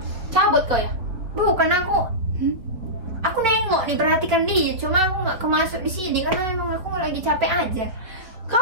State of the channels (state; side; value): late; left; 4.5 ms